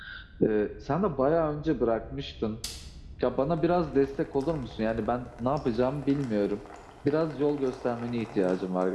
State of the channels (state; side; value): identical; both; correlation 1.00